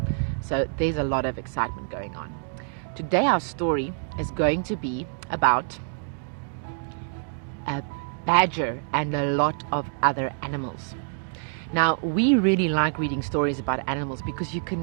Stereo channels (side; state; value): left; silent; digital silence